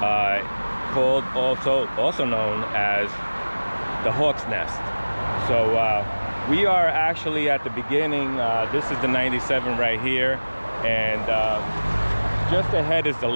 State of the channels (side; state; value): both; inverted; correlation -1.00